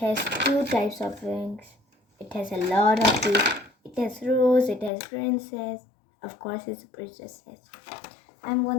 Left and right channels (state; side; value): drops out; right; at 4.9 s